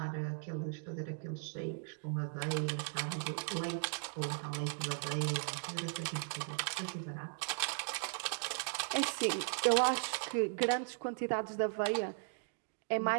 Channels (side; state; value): left; silent; digital silence